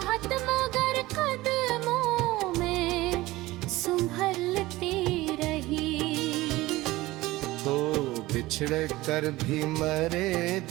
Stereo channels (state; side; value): quieter; left; 18.7 dB